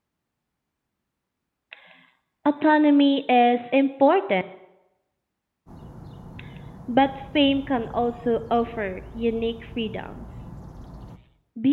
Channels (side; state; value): both; identical; correlation 1.00